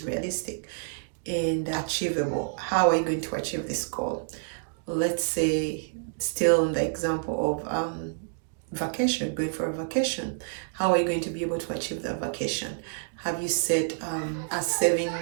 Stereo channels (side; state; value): left; silent; digital silence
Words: realistic and achievable. How are you going to achieve this goal? Let's say, still in the example of vacation, going for a vacation. How are you going to be able to achieve that vacation? Have you set a